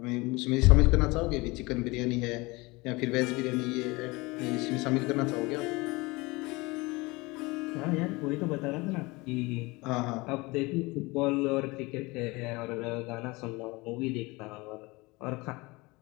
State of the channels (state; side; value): quieter; right; 23.7 dB